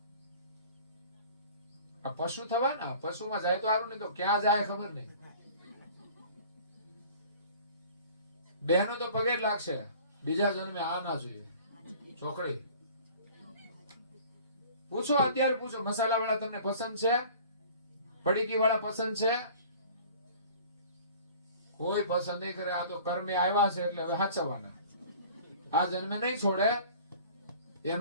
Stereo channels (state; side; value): inverted; both; correlation -0.47